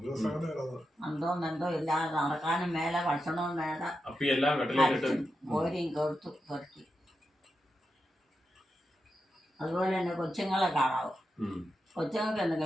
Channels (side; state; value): both; normal; correlation 0.88